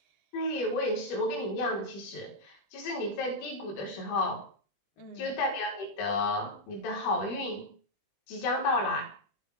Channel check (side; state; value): right; late; 20 ms